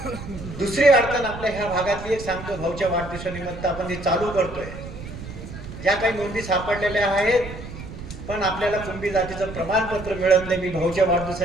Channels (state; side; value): noise; right; rumble, 11 dB below the sound